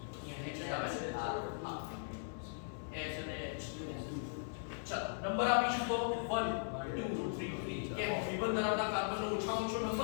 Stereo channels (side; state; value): right; silent; digital silence